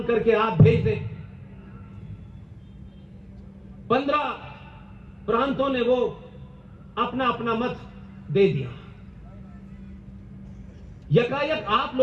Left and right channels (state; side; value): identical; both; correlation 1.00